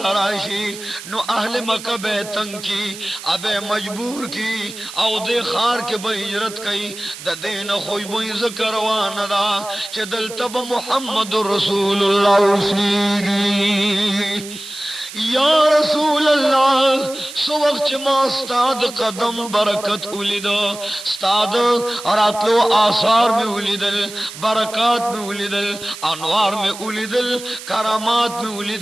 نو اہل مکہ بے تنگ کی ابے مجبور کی او دے خار کے بے ہجرت کی دا دین خوی بے ذکر وانا چہ دل تب محمد رسول اللہ سیگی یا رسول اللہ سو وقت ما استاد قدم برکت اولیدو استاد راتلو آثار میں اولیدل برکات میں اولیدل انوار میں اولیدل کرامات میں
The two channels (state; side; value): noise; right; hiss, 13 dB below the sound